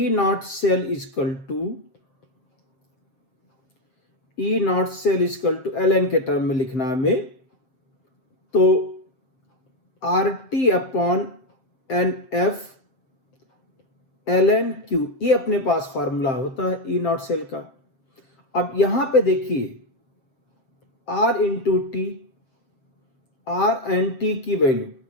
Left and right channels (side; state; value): right; late; 7.6 ms